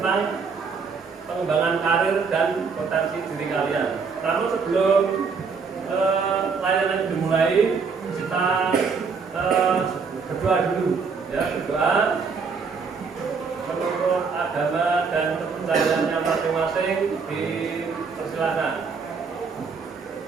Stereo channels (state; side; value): quieter; left; 5.3 dB